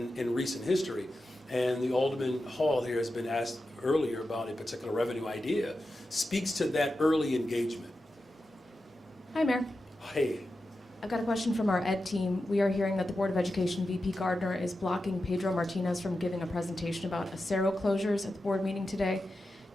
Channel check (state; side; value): normal; both; correlation 0.91